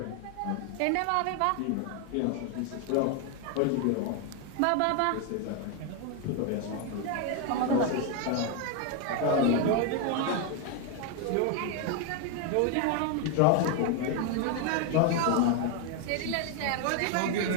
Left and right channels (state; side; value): different; both; correlation 0.01